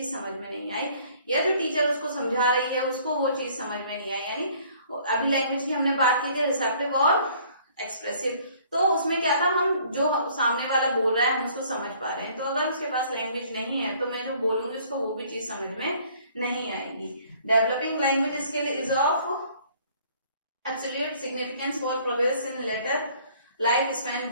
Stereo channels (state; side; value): inverted; both; correlation -0.57